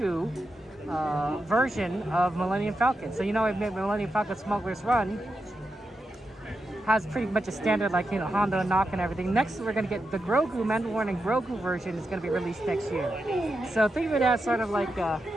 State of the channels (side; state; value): both; normal; correlation 0.87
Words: version of Millennium Falcon. So you know, Millennium Falcon Smuggler's Run has pretty much a standard, like, you know, Hondo and Knock and everything. Next, we're gonna get the Grogu Mandalorian Grogu version is gonna be released next year. So think of it as sort of like